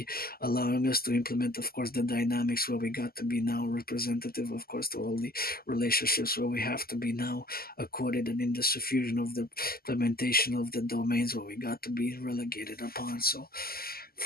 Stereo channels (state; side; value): late; right; 0.44 ms